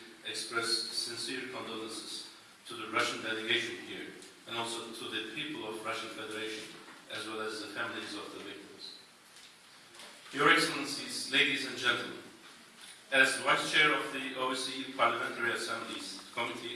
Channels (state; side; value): identical; both; correlation 1.00